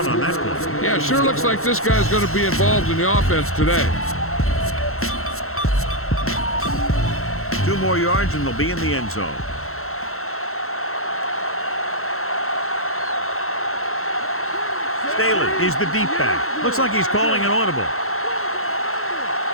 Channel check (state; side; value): late; right; 0.62 ms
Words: on that play. Yeah, sure looks like this guy's going to be involved in the offense today. 2 more yards and they'll be in the end zone. Staley is the deep back. Looks like he's calling an audible.